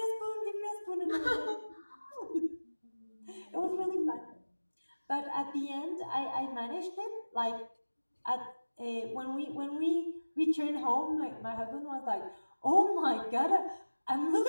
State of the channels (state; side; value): inverted; both; correlation -1.00